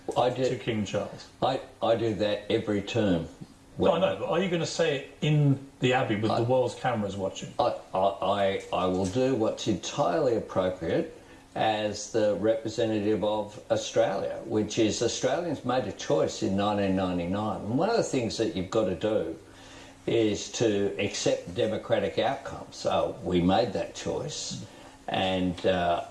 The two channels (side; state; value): both; identical; correlation 1.00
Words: to King Charles? I do that every term. No, I know, but are you going to say it in the Abbey with the world's cameras watching? I will do what's entirely appropriate as the representative of Australia, which is Australians made a choice in 1999. And one of the things that you've got to do is to accept democratic outcomes. So we made that choice, and